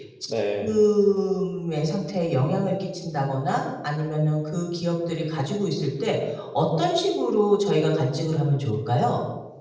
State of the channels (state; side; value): identical; both; correlation 1.00